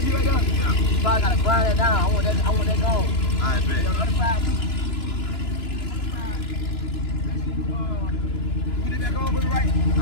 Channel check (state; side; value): late; right; 2.9 ms